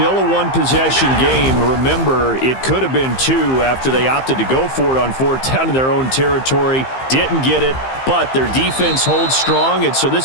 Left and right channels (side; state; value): right; late; 15 ms